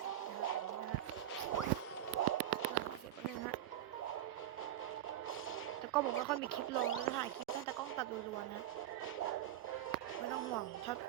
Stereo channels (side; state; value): left; quieter; 12.3 dB